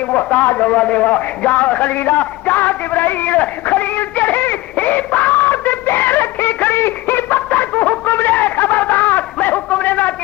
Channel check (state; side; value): quieter; right; 19.0 dB